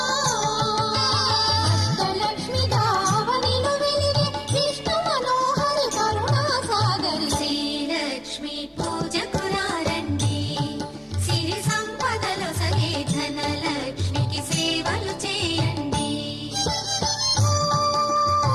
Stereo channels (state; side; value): identical; both; correlation 1.00